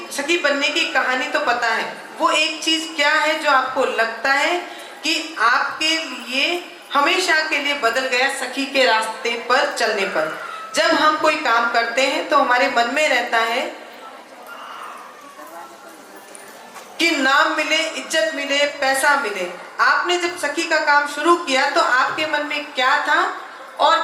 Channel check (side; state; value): both; identical; correlation 1.00